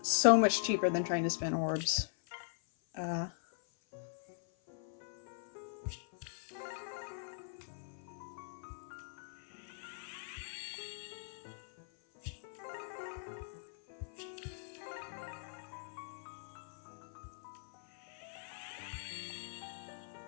so much cheaper than trying to spin orbs.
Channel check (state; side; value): silent; right; 51 dB below the other